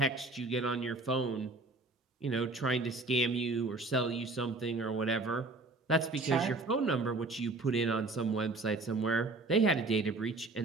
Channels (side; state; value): left; quieter; 3.2 dB